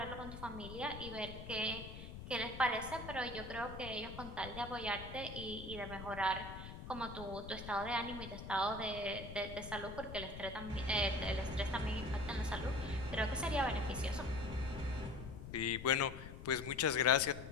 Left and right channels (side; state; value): left; noise; rumble, 10 dB below the sound